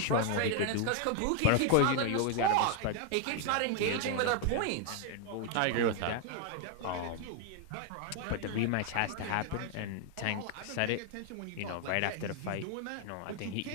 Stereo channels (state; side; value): different; both; correlation 0.00